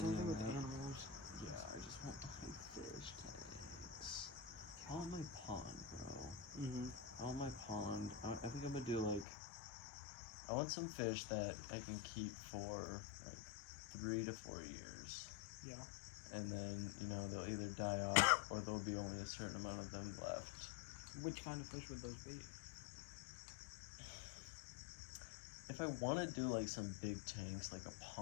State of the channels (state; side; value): drops out; right; at 9.2 s